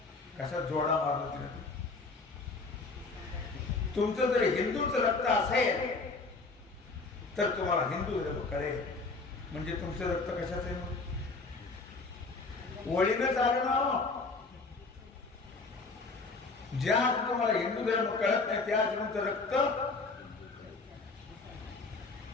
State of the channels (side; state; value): right; quieter; 3.8 dB